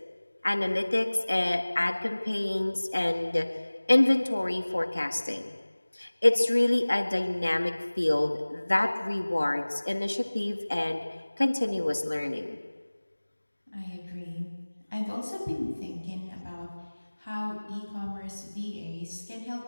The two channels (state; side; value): inverted; both; correlation -1.00